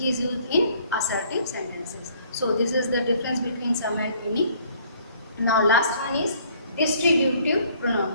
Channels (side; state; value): both; inverted; correlation -0.60